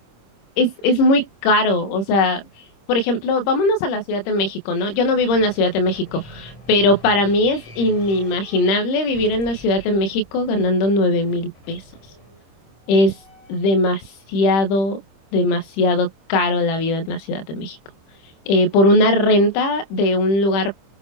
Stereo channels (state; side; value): late; right; 25 ms